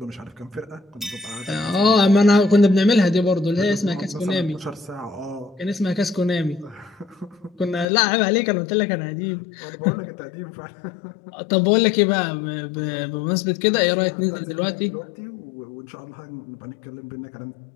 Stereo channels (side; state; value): right; drops out; at 7.9 s